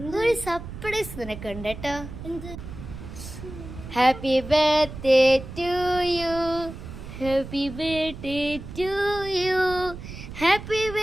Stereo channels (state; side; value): noise; right; rumble, 11 dB below the sound